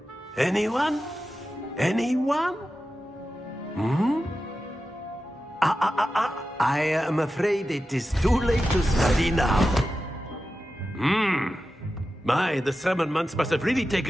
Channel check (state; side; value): normal; both; correlation 0.92